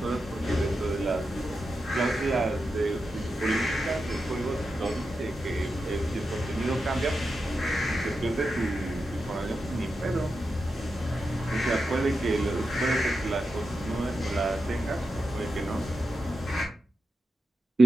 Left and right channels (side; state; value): both; normal; correlation 0.89